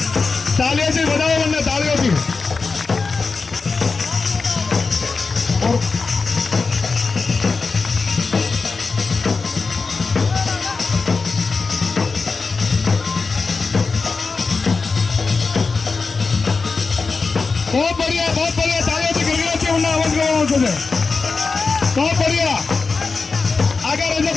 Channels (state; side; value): quieter; right; 4.4 dB